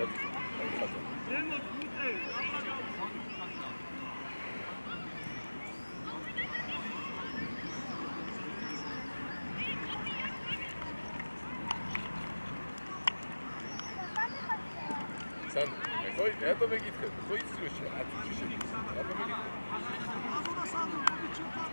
Sen koy, ne to megit kad? Koy izliyorsun. Atı çişi. Ne to megit?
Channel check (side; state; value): both; inverted; correlation -1.00